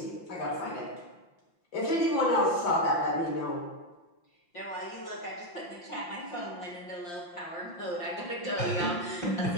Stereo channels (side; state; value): right; late; 5.8 ms